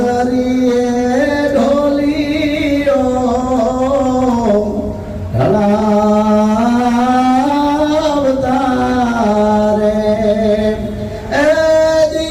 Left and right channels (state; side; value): identical; both; correlation 1.00